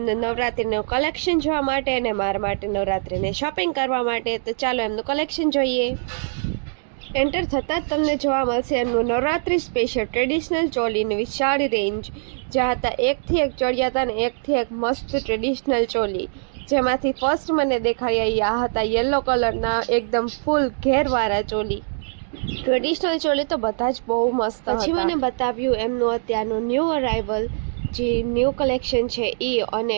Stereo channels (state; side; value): silent; left; digital silence